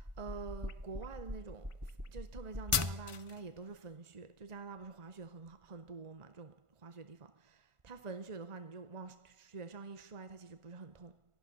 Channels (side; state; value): left; late; 1.5 ms